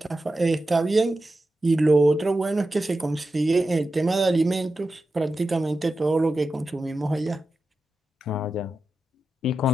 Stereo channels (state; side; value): normal; both; correlation 0.91